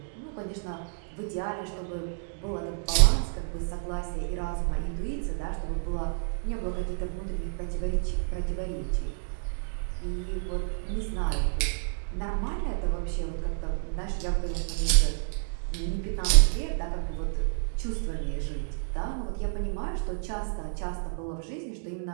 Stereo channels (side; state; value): left; silent; digital silence